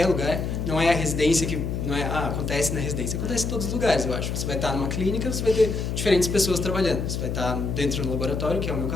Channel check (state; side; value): noise; left; hum, 2 dB below the sound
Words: lugar. Não é a residência que... Não é, acontece na residência. Acontece em todos os lugares, eu acho. Você vai estar numa clínica, você vai ter diferentes pessoas trabalhando. Você vai estar dentro do laboratório, que é o meu